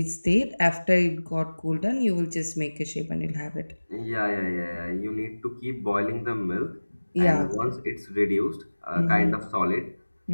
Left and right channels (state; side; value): inverted; both; correlation -1.00